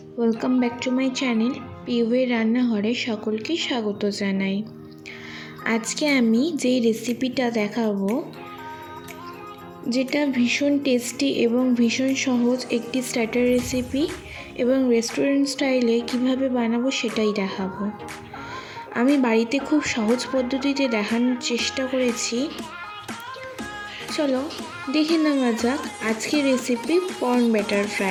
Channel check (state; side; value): identical; both; correlation 1.00